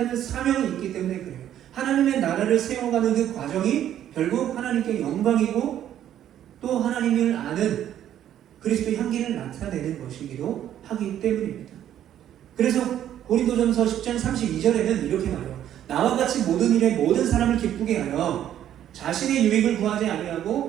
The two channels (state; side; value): quieter; left; 11.0 dB